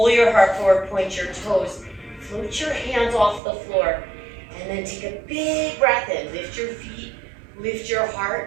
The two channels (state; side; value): drops out; left; at 3.4 s